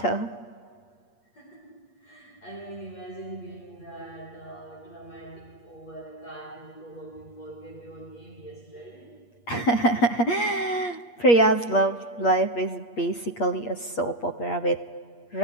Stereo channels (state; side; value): late; right; 8.5 ms